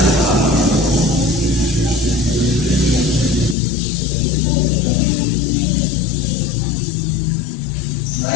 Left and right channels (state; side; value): drops out; right; at 3.6 s